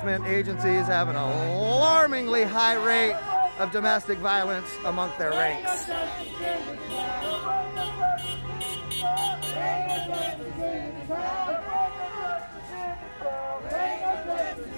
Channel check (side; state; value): both; inverted; correlation -1.00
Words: agencies have an alarmingly high rate of domestic violence among their ranks.